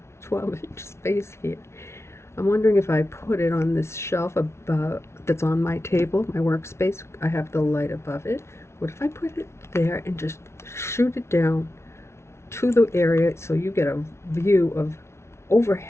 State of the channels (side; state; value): right; late; 0.13 ms